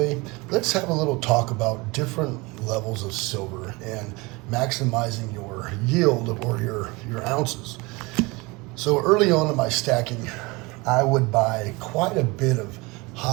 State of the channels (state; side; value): quieter; left; 24.8 dB